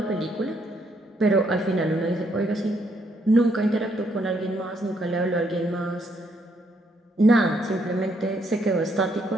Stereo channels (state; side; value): normal; both; correlation 0.73